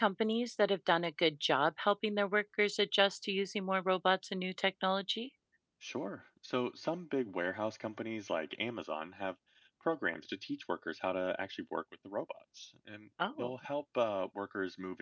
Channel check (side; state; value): both; identical; correlation 1.00